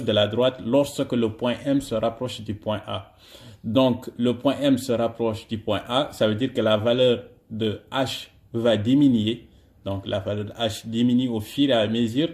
de la droite lorsque le point M se rapproche du point A. Donc le point M se rapproche du point A, ça veut dire que la valeur de H va diminuer. Donc la valeur de H diminue au fur et à mesure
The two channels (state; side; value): identical; both; correlation 1.00